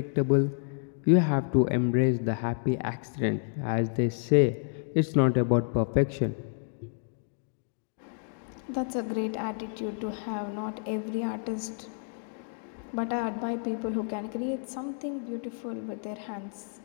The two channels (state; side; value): silent; right; 58 dB below the other